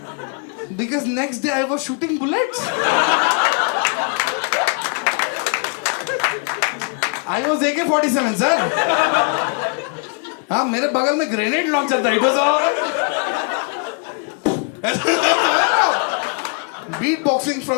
because next day I was shooting bullets. I was AK-47 sir. हाँ, मेरे बगल में ग्रेनेड लॉन्चर था। It was beatboxing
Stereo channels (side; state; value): right; quieter; 36.1 dB